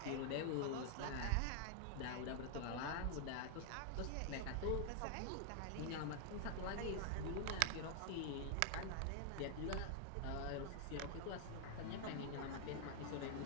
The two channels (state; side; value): different; both; correlation 0.00